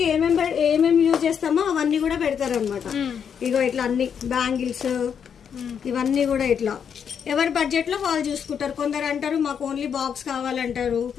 ఏమేమి యూజ్ చేస్తామో అవన్నీ కూడా పెడతారు అనమాట. ఇగో ఇట్లా అన్ని బ్యాంగిల్స్ ఇవన్నీ కూడా ఇట్లా ఎవరి బడ్జెట్ లో వాళ్ళు చూసుకుంటారు. కొందరు అంటారు మాకు ఓన్లీ బాక్స్ కావాలంటారు,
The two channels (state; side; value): quieter; right; 7.5 dB